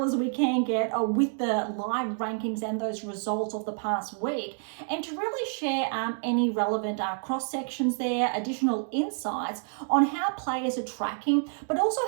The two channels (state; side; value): silent; left; 59 dB below the other